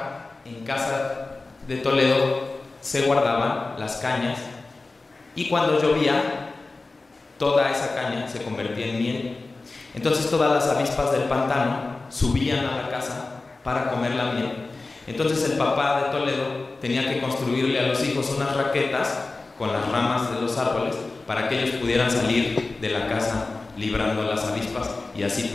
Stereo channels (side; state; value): right; quieter; 3.5 dB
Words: en casa de Toledo se guardaban las cañas, y cuando llovía, toda esa caña se convertía en miel. Entonces todas las avispas del pantano subían a la casa para comer la miel. Entonces el papá de Toledo tenía que construirle a los hijos unas raquetas con las ramas de los árboles para que ellos pudieran salir de la casa librando las avispas y así